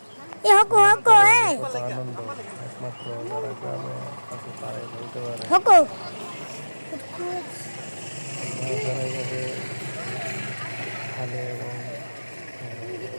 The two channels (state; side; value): inverted; both; correlation -1.00